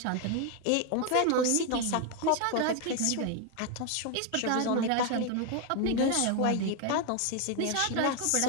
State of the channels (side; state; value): both; different; correlation 0.01